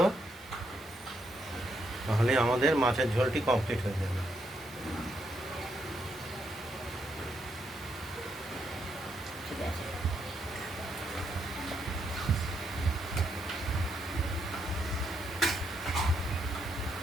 তাহলে আমাদের মাছের ঝোলটি কমপ্লিট হয়ে যাবে। ঠিক আছে,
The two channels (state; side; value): normal; both; correlation 0.77